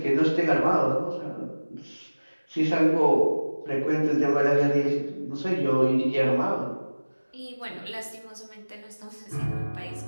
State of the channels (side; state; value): both; inverted; correlation -1.00